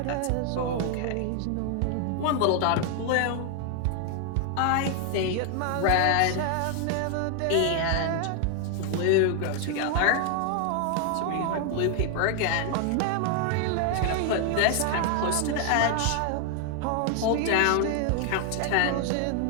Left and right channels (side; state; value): both; different; correlation 0.00